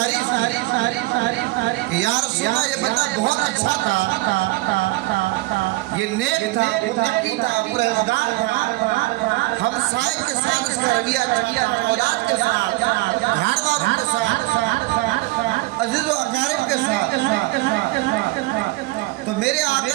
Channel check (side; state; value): left; quieter; 20.6 dB